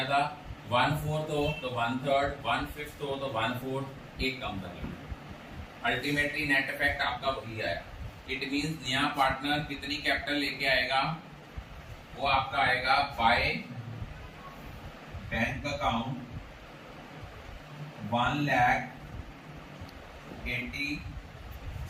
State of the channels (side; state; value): both; identical; correlation 1.00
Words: था, 1/4 हो तो 1/3, 1/5 हो तो 1/4, एक कम कर लेंगे, अल्टीमेटली नेट इफेक्ट आपका वही आया। इट मींस नया पार्टनर कितनी कैपिटल लेके आएगा, वो आपका आएगा बाय बैंक अकाउंट